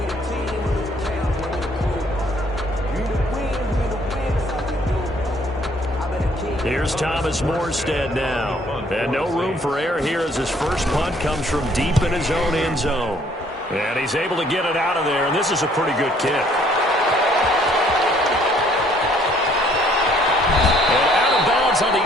Here's Thomas Morstead now. And no room for error here as his first punt comes from deep in his own end zone. And he's able to get it out of there, and this is a pretty good kick. On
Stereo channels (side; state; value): both; normal; correlation 0.62